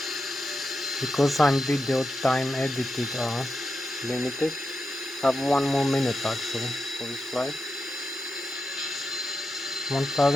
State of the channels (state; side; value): normal; both; correlation 0.88